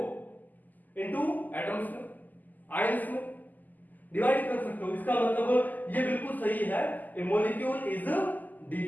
इनटू एटम्स में, आयंस में डिवाइड कर सकते हो। इसका मतलब ये बिल्कुल सही है, ए मॉलिक्यूल इज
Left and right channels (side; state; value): right; late; 0.084 ms